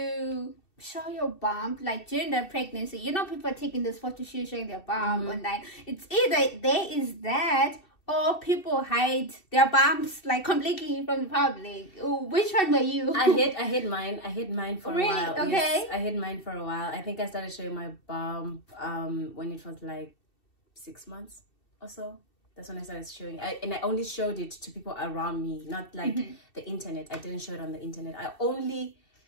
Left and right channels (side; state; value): right; late; 2.7 ms